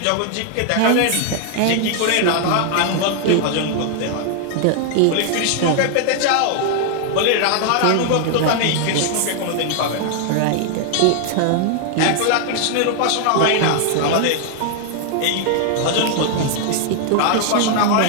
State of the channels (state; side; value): different; both; correlation 0.00